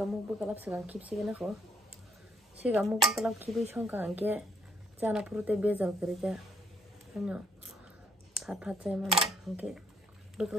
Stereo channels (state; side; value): normal; both; correlation 0.69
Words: bu kalap sanang kipsi gena ko sigamuk bu kalap kibi songka angke jana purute bezal kerja ano phat chay man angke bu